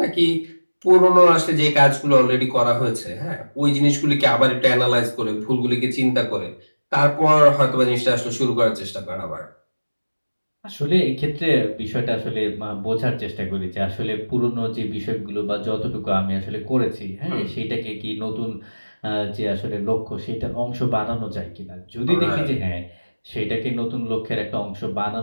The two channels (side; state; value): both; inverted; correlation -1.00